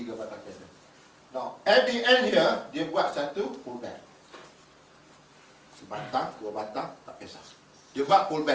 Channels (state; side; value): identical; both; correlation 1.00